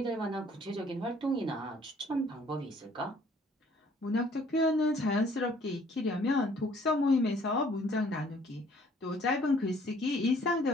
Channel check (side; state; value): both; normal; correlation 0.59